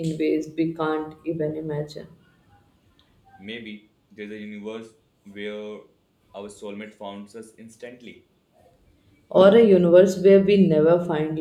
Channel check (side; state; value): both; identical; correlation 1.00